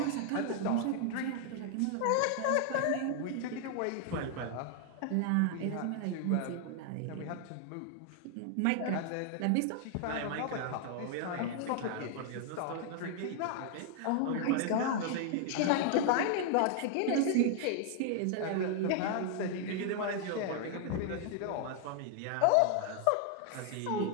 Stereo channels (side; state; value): both; different; correlation 0.00